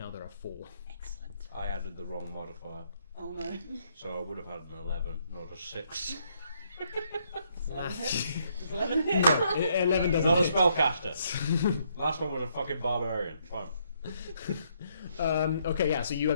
4. Excellent. I added the wrong modifier, Oh no. so I would have had an 11, not a 6. Does 11 hit? No, 11 doesn't Not a hit. spellcaster. Last one was a fucking barbarian. Fine. Okay, yeah, so you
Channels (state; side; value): inverted; both; correlation -0.72